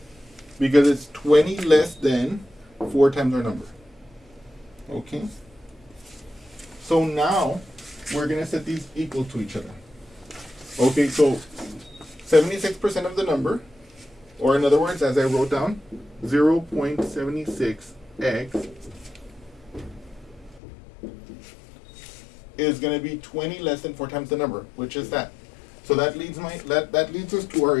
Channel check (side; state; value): right; drops out; at 20.6 s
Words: Because it's 20 less than 4 times our number. Okay? So now we're going to set these equal to each other. Okay, so 76% of the number, or in other words, as I wrote down, 0.76x is going to be 20 less than 4 times the number, which is that. So that leads us to our